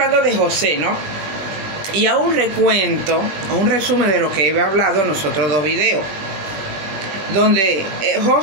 de José, ¿no? Y a un recuento, a un resumen de lo que he hablado en los otros dos videos, donde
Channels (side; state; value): left; late; 21 ms